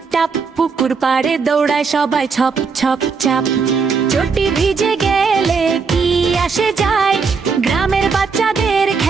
টাপ, পুকুর পাড়ে দৌড়ায় সবাই ছপ ছপ চাপ। চটি ভিজে গেলে কি আসে যায়, গ্রামের বাচ্চাদের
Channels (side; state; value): left; quieter; 5.2 dB